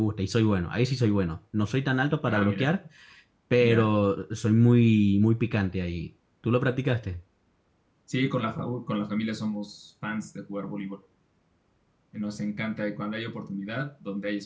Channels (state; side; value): identical; both; correlation 1.00